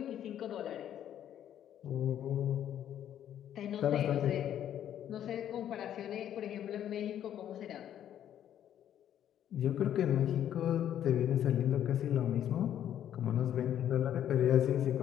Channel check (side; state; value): right; quieter; 10.5 dB